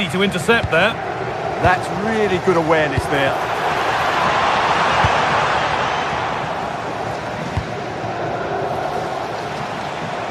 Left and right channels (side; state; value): both; identical; correlation 1.00